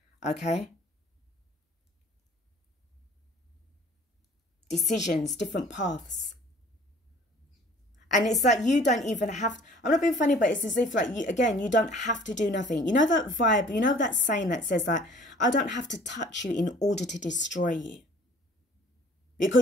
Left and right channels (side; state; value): both; normal; correlation 0.52